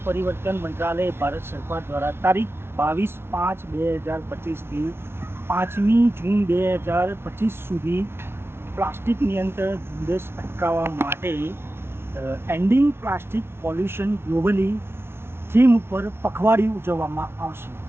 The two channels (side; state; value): left; late; 0.11 ms